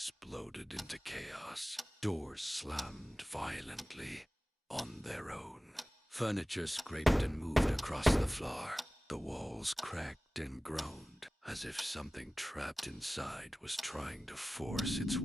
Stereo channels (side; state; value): both; normal; correlation 0.97